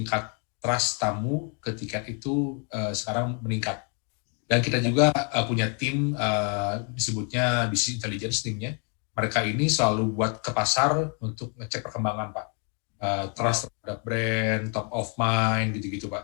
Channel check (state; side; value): quieter; right; 39.9 dB